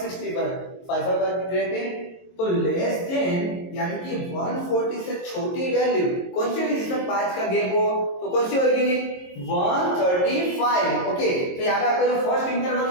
5 रहते। तो लेस देन यानी कि 140 से छोटी वैल्यू कौन सी होगी जिसमें 5 का गैप हो, तो कौन सी होगी 135। ओके, तो यहाँ पे आपका जो फर्स्ट इंटरवल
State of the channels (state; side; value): late; right; 22 ms